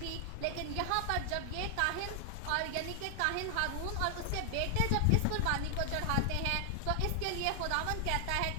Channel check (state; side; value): different; both; correlation 0.00